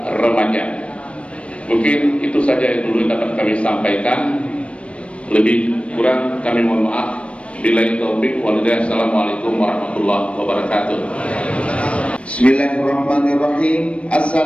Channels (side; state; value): right; late; 0.061 ms